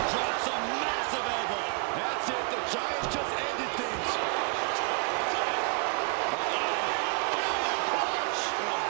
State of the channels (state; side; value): quieter; left; 34.3 dB